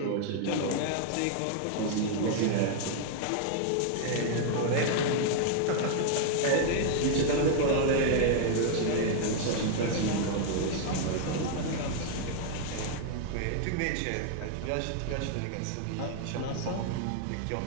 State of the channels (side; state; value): both; different; correlation 0.00